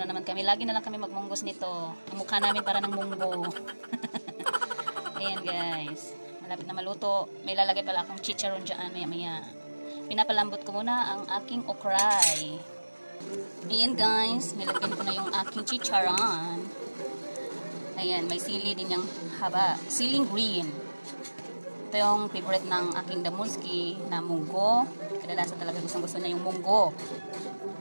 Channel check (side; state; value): both; inverted; correlation -1.00